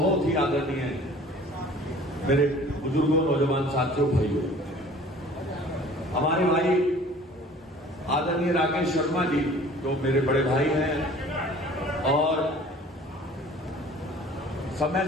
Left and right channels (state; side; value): normal; both; correlation 0.48